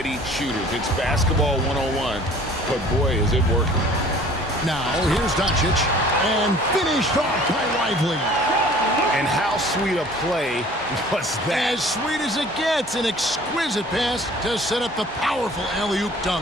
shooters. It's basketball 101, but boy, is it working. Now, here's Doncic. And finished off by Lively. And how sweet a play was that? As sweet as it gets, an exquisite pass to set up the powerful alley-oop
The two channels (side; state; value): both; normal; correlation 0.50